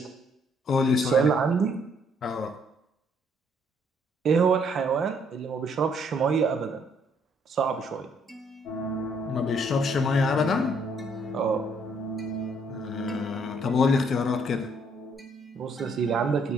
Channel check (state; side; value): normal; both; correlation 0.67